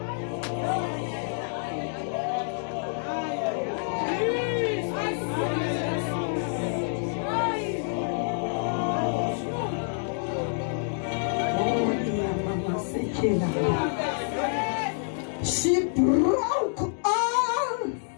She broke all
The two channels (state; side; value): silent; right; digital silence